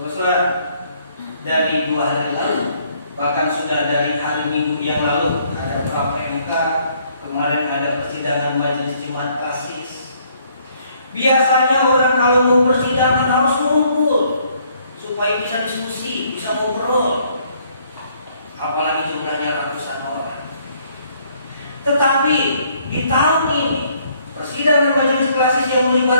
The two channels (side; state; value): both; inverted; correlation -0.65